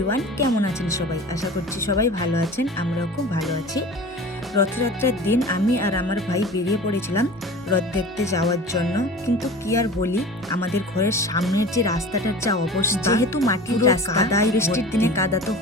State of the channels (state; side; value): normal; both; correlation 0.38